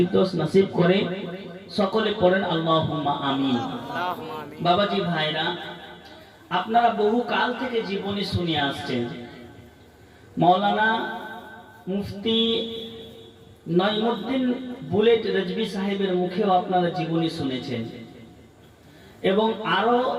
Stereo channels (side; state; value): both; identical; correlation 1.00